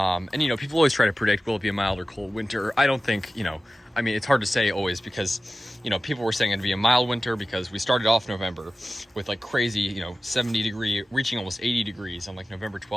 always try to predict, will it be a mild or cold winter? I don't think, it's hard to say always because, people were saying it'd be a mild winter because we started off November with like crazy, 70 degree, reaching almost 80 degrees on like November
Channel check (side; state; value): both; normal; correlation 0.96